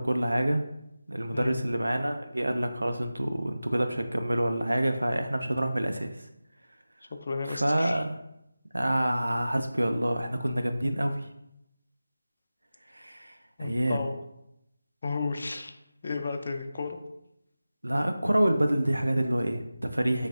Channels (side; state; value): both; inverted; correlation -0.95